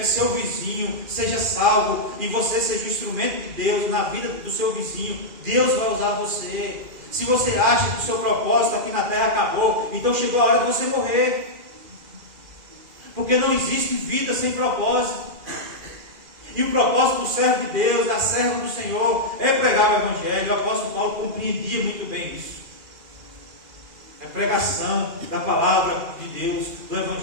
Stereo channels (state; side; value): late; left; 2.4 ms